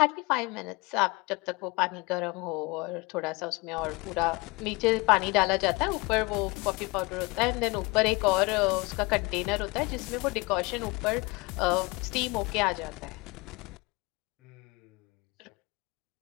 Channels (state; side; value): quieter; right; 25.7 dB